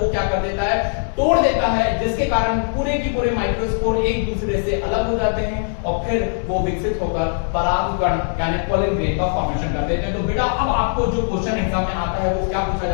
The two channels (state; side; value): silent; right; 65 dB below the other